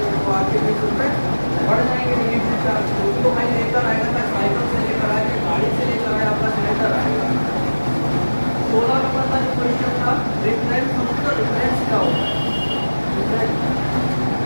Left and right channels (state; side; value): inverted; both; correlation -1.00